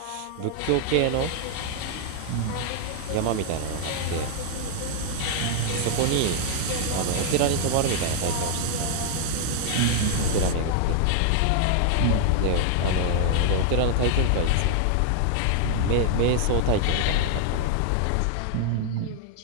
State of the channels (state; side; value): different; both; correlation 0.00